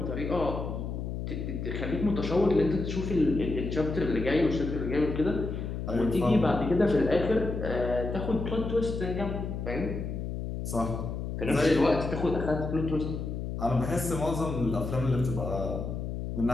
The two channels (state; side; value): noise; left; hum, 4 dB below the sound